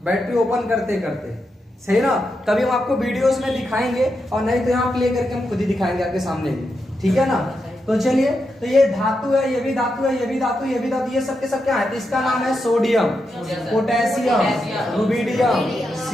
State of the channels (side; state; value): both; normal; correlation 0.85